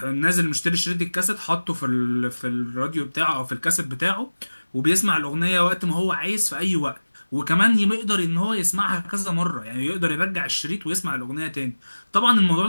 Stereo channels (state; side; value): inverted; both; correlation -1.00